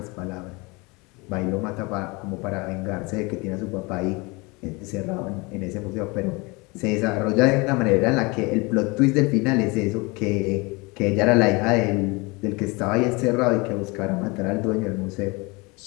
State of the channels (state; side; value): quieter; right; 26.6 dB